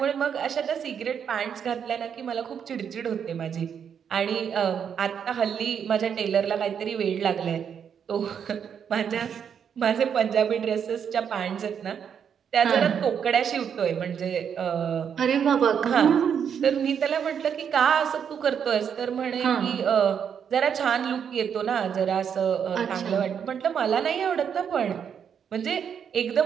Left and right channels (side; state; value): left; quieter; 7.8 dB